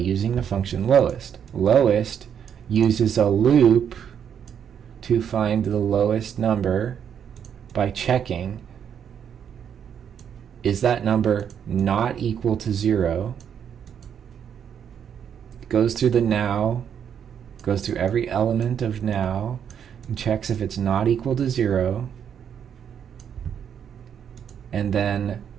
the function lowest. Lowest uses a loop to find the lowest number by checking, is that number not equal to 0? It goes through the now, goes through every element of now, and checks if it's not equal to 0, and then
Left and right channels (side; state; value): left; quieter; 8.3 dB